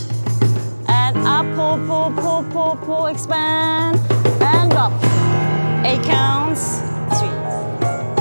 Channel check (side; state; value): both; inverted; correlation -1.00